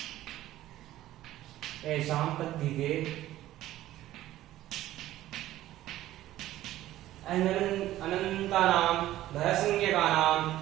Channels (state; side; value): quieter; left; 14.5 dB